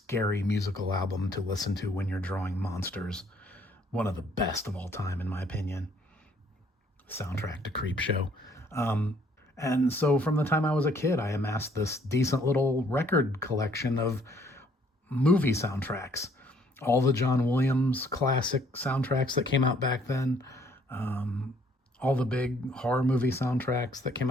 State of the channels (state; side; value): normal; both; correlation 0.63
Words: musical album to listen to when you're drawing monsters. One of the best of all time, in my opinion. Soundtrack to Creepshow. And so from the time I was a kid, I amassed this decent little record collection of movie soundtracks. All the John Williams classic soundtracks that came out back then. All the big horror movie soundtracks that came